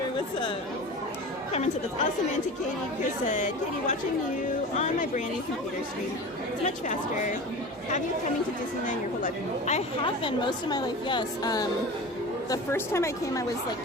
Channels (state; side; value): normal; both; correlation 0.33